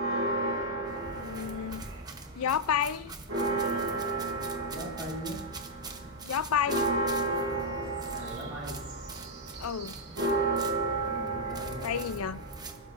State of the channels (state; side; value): normal; both; correlation -0.05